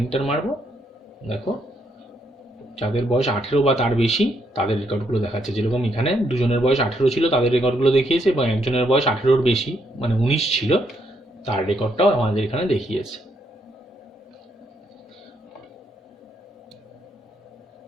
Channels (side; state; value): both; normal; correlation 0.75